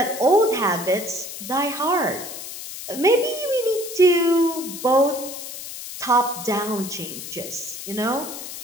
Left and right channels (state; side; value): noise; left; hiss, 10 dB below the sound